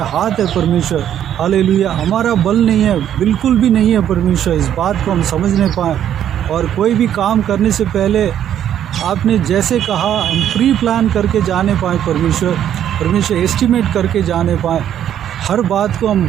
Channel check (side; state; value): left; quieter; 10.3 dB